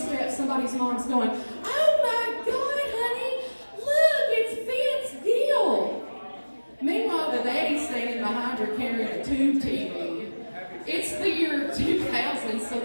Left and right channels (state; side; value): inverted; both; correlation -1.00